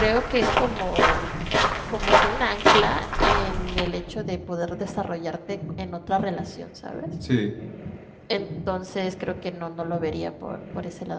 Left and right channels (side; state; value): both; identical; correlation 1.00